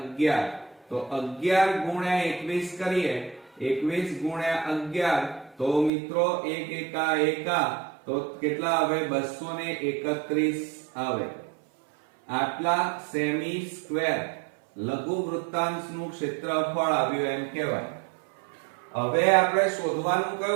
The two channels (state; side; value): drops out; left; at 5.9 s